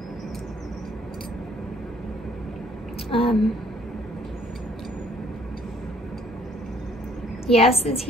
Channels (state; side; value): normal; both; correlation 0.62